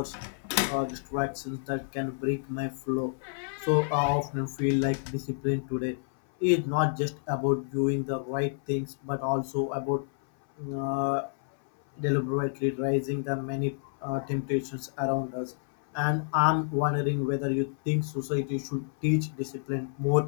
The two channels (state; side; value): silent; right; 58 dB below the other